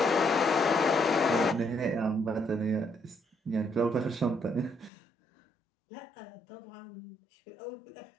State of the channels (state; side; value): drops out; right; at 4.9 s